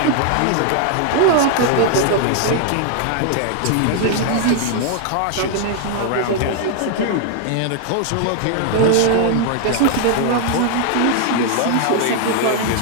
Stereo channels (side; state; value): both; different; correlation 0.00